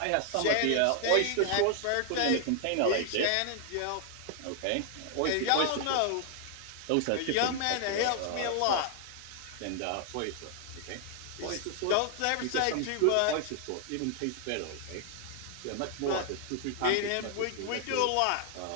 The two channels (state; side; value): different; both; correlation 0.00